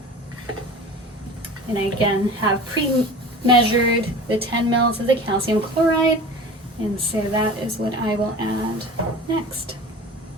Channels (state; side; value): normal; both; correlation 0.37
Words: And I again have pre-measured the 10 mL of the calcium chloride, and so that is what I will add next.